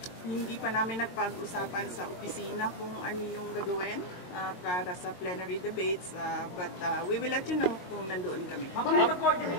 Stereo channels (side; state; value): right; late; 22 ms